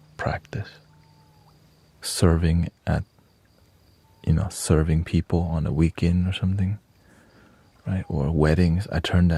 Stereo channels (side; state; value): both; identical; correlation 1.00